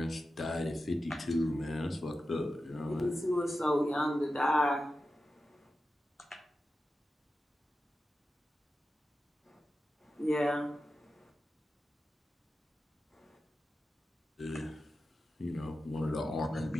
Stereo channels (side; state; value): both; normal; correlation 0.92